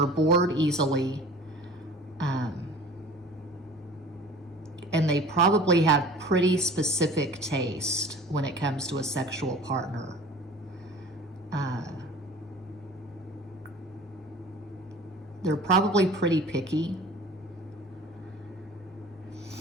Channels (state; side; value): normal; both; correlation 0.43